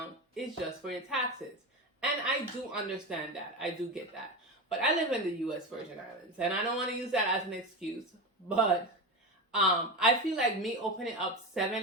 is just for your taxes. And I do understand that. I do get that. But I live in the U.S. Virgin Islands, and I don't want to use that as an excuse. But I feel like me opening up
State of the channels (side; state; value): both; normal; correlation 0.21